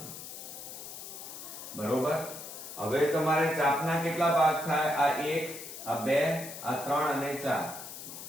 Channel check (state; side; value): noise; left; hiss, 11 dB below the sound